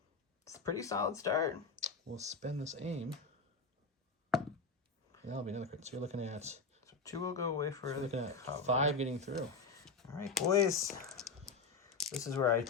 It's a pretty solid start. We'll spend this aim. That'll be another crit. So you're looking at... So 2 will go away for... You're looking at 5 getting through. All right, boys. This is where I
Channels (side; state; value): right; quieter; 4.2 dB